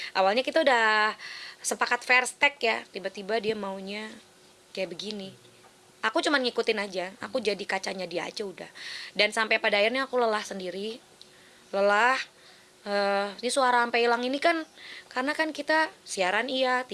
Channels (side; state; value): both; identical; correlation 1.00